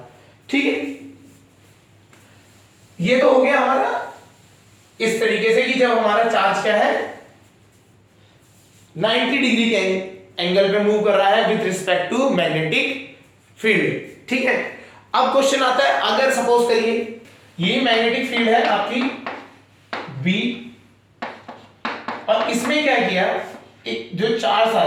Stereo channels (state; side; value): identical; both; correlation 1.00